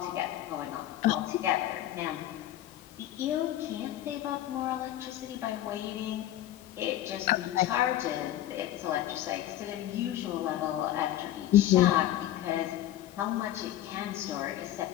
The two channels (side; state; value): right; quieter; 13.1 dB